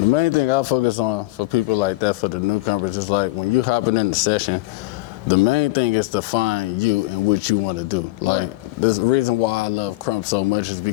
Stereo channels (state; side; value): quieter; right; 20.3 dB